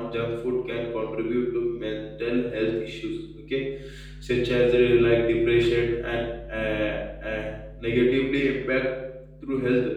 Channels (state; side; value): identical; both; correlation 1.00